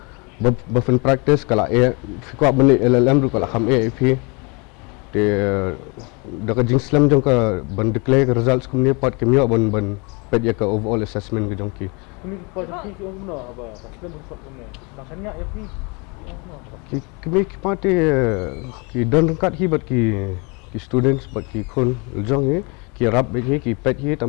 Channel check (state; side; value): quieter; right; 30.4 dB